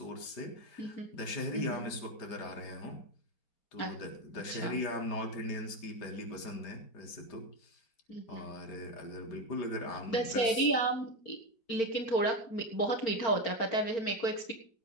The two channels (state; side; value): late; right; 4.4 ms